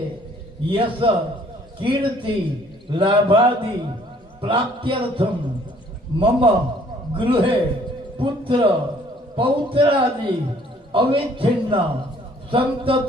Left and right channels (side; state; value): both; normal; correlation 0.59